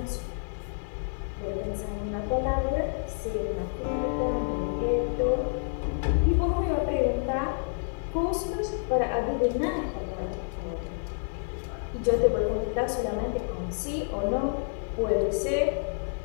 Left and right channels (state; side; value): silent; right; digital silence